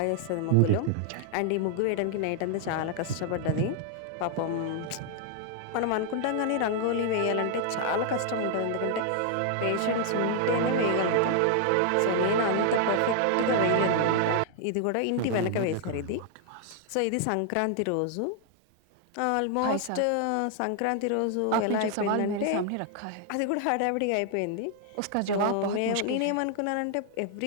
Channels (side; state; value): both; different; correlation 0.00